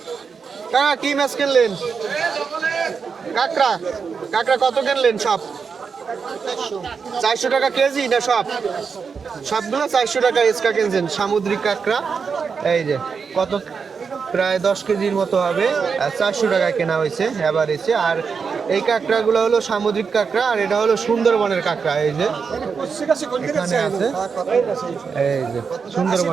কাকা কি মাছ কিনলেন? কাঁকড়া, কাঁকড়া কত কিনলেন? সব 400 টাকা কেজি না সব? সবগুলো 400 টাকা এক্সট্রা কিনছেন সামুদ্রিক কাঁকড়া। এই যে কত, প্রায় 10 কেজির মতো হবে, 400 টাকা কেনা হয়েছে এভারেজে। আর এই কাঁকড়াগুলো হলো সামুদ্রিক কাঁকড়া, আর এটা হলো সুন্দরবনের কাঁকড়া। এই যে এখানে আছে, এই যে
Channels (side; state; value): left; quieter; 5.7 dB